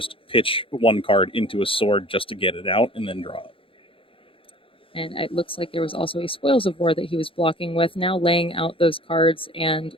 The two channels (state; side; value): late; right; 0.26 ms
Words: pitch 1 card into a sword just to get it out and then draw it. And it looks like there was also a Spoils of War that he was blocking with, now laying out those cards and